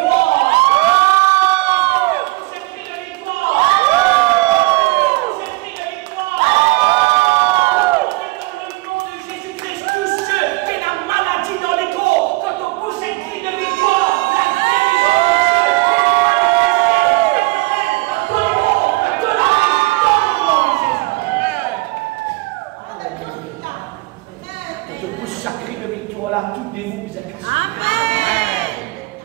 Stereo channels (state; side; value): quieter; left; 23.2 dB